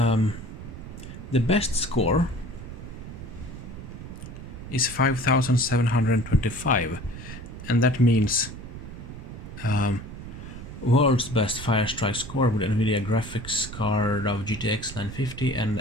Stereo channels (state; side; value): noise; right; rumble, 11 dB below the sound